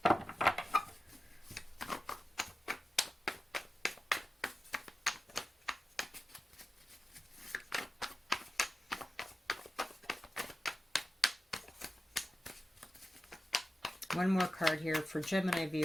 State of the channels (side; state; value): both; normal; correlation 0.92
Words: One more card here for Gemini